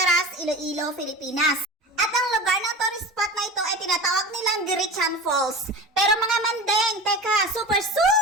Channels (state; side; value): normal; both; correlation 0.33